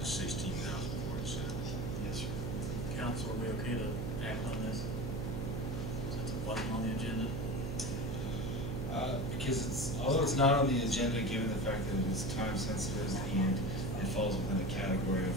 16,047. Yes, sir. Council, are we okay to act on this? Since it wasn't on the agenda? Because although it's not on the agenda, given the fact that it is time sensitive and it falls within the category of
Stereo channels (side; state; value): right; noise; hum, 2 dB below the sound